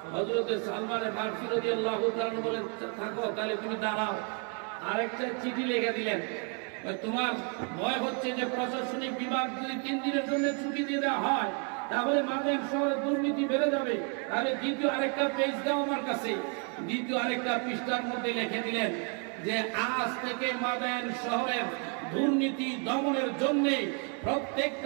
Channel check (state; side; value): quieter; left; 38.3 dB